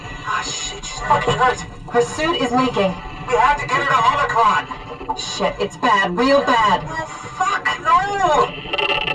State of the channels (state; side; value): identical; both; correlation 1.00